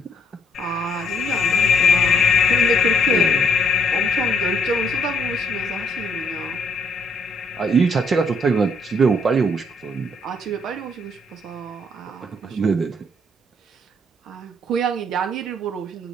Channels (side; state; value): both; normal; correlation 0.68